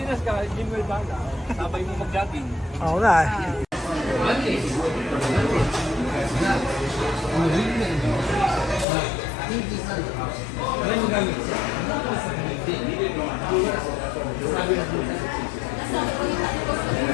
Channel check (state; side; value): drops out; right; at 8.8 s